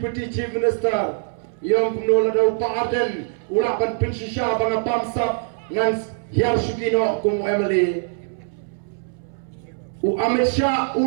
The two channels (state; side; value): silent; left; 63 dB below the other